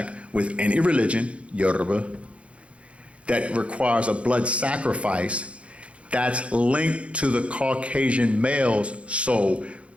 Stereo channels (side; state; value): left; late; 0.061 ms